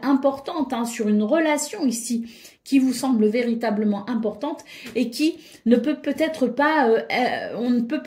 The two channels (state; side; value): identical; both; correlation 1.00